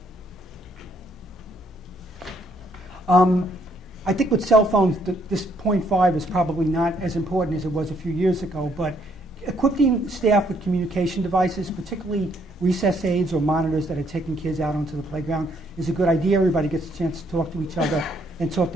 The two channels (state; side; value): normal; both; correlation 0.69